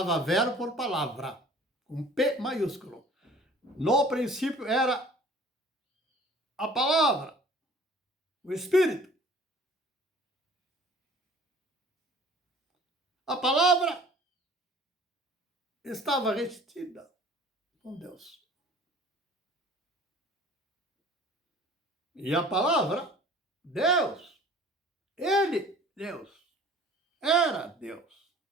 verbo por palavra, com P maiúsculo. No princípio era a palavra, o Espírito. A palavra estava retida com Deus. E a palavra, Deus, Ele, Deus, era Deus.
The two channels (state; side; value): normal; both; correlation 0.49